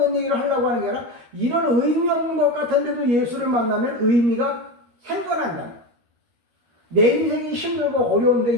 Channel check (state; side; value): late; left; 13 ms